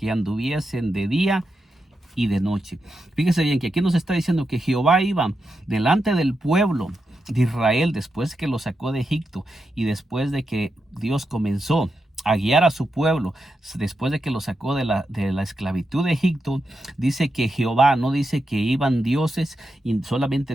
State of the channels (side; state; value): both; normal; correlation 0.87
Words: anduviesen de día y de noche. Fíjese bien que aquí nos está diciendo que Jehová iba delante del pueblo de Israel después que lo sacó de Egipto, y después de que Dios comenzó a guiar a su pueblo, después de que lo sacó de la esclavitud de Egipto. Dice que Jehová, no dice que iban dioses, y solamente